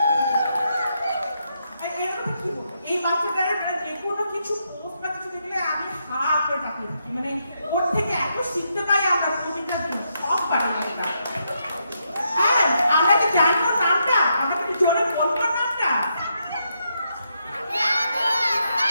এই বাচ্চাটার যে কোনো কিছু পোস্ট বা কিছু দেখলে আমি হা করে তাকিয়ে থাকি, মানে ওর থেকে এত শিখতে পাই আমরা প্রতিটা দিন, সব পারি আমরা। হ্যাঁ, আমরা কি জানি ওর নামটা? আমরা কি জোরে বলবো নামটা?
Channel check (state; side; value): inverted; both; correlation -0.80